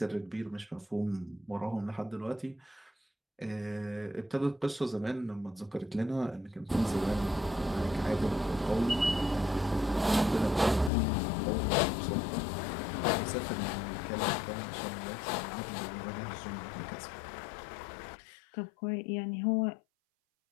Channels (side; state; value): right; drops out; at 10.9 s